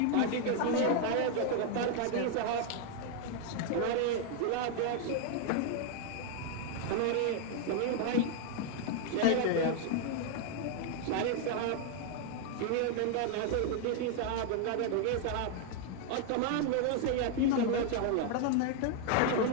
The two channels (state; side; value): different; both; correlation 0.01